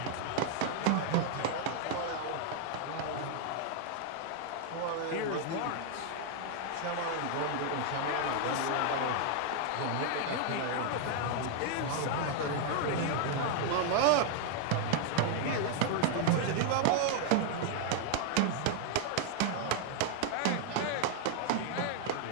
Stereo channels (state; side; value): different; both; correlation 0.00